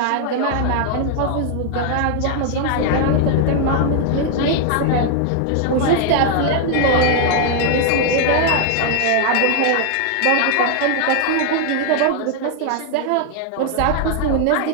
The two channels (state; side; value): different; both; correlation 0.00